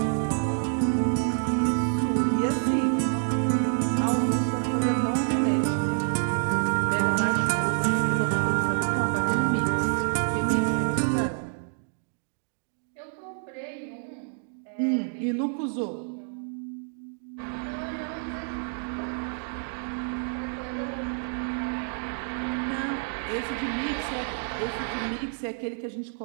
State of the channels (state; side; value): silent; left; 60 dB below the other